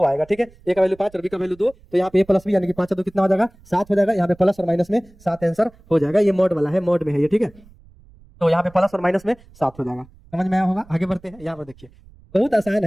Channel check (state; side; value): noise; right; rumble, 26 dB below the sound